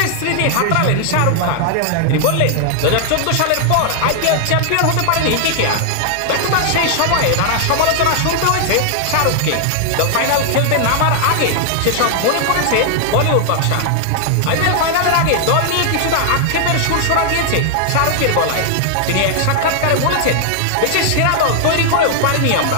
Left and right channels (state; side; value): different; both; correlation 0.00